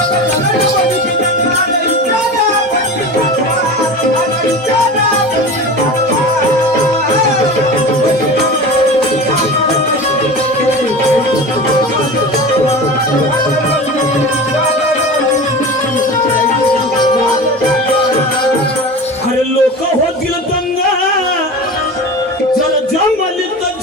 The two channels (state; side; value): normal; both; correlation 0.31